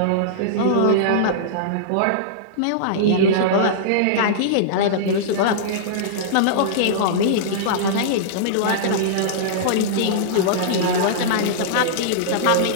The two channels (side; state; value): both; different; correlation -0.03